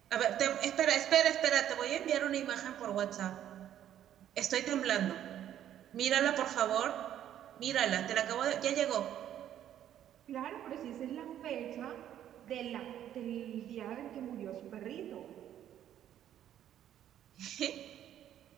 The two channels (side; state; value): left; quieter; 11.0 dB